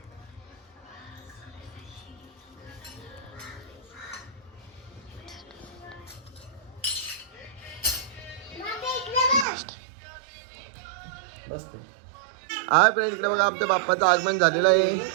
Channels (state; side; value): drops out; left; at 9.5 s